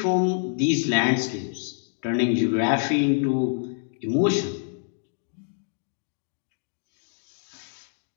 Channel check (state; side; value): silent; right; digital silence